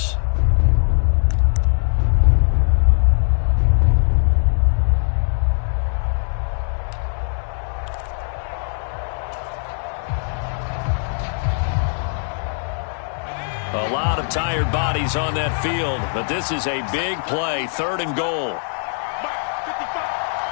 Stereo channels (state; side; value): silent; right; digital silence